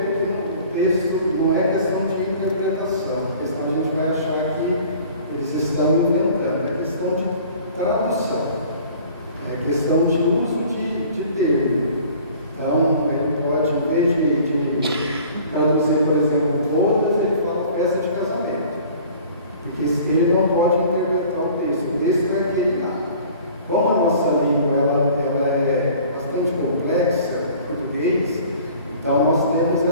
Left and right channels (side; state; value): both; inverted; correlation -0.48